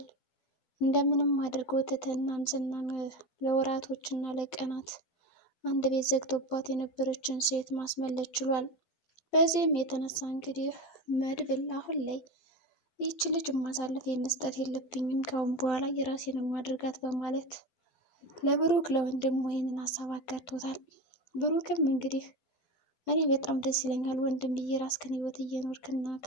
እንደምንም አድርጎ ትትናን ዝናን ለወራቶችና ለቀናት አንድ ቤት ዘግቶባት የነበረችን ሴት ማስመለጥ ችሏል። በዚህም የተነሳ እንግዲህ መድብል አሁን ላይ ይህች ልጅ ማሳለፍ የመስጠት የለብኝም ካሁን በኋላ የራሴን ማድረጋት በማለት ለብሩክ ለወንድም ይህንን ሀሳብ አጋርቶታል። ብሩክም እንግዲህ እኔ በጣም ደስ ይለኛል ወንድም የራስህን ህይወት እየኖርክና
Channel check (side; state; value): right; late; 12 ms